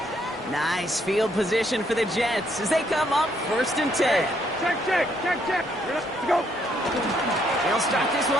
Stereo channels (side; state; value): both; normal; correlation 0.71